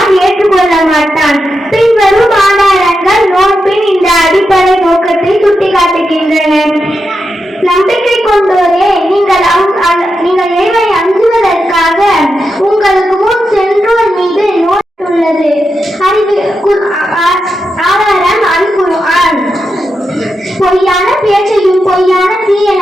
ஏற்றுக்கொள்ள மாட்டான். பின்வரும் ஆதாரங்கள் நோன்பின் இந்த அடிப்படை நோக்கத்தை சுட்டிக்காட்டுகின்றன. நம்பிக்கை கொண்டோரே, நீங்கள் இறைவனை அஞ்சுவதற்காக உங்களுக்கு முன் சென்றோர் மீது நோன்பு உள்ளது. ஆதாரம் அல் குர்ஆன். பொய்யான பேச்சையும் பொய்யான தீய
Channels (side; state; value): both; normal; correlation 0.87